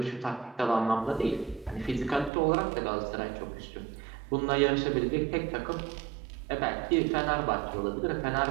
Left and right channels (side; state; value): left; drops out; at 2.3 s